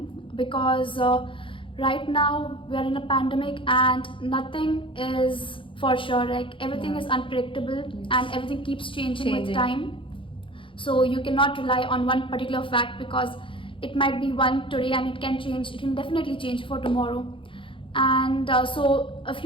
because right now we are in a pandemic and nothing is for sure. Like everything is unpredictable and everything keeps changing with time. So you cannot rely on one particular fact, because it might be one today and it can change. It can definitely change for tomorrow. And so a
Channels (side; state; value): right; late; 0.25 ms